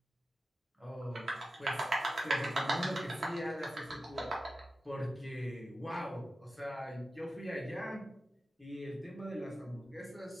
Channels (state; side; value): normal; both; correlation 0.93